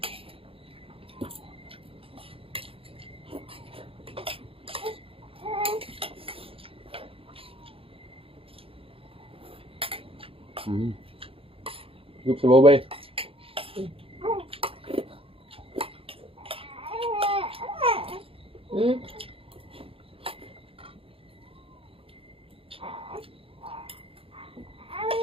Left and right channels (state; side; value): late; left; 0.27 ms